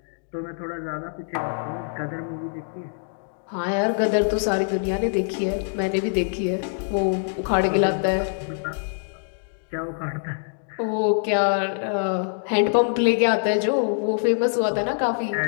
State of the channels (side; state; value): right; silent; digital silence